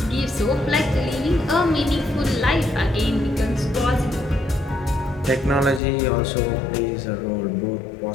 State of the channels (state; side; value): drops out; right; at 5.8 s